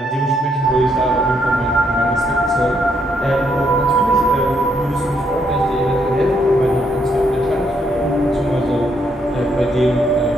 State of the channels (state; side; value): normal; both; correlation 0.74